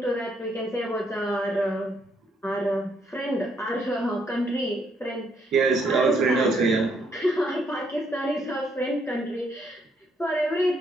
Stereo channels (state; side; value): normal; both; correlation 0.72